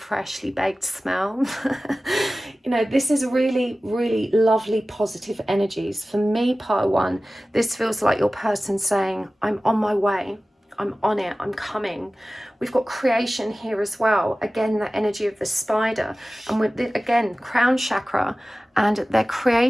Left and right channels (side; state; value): both; normal; correlation 0.96